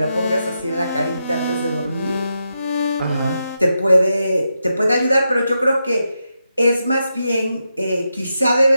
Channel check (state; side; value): inverted; both; correlation -0.86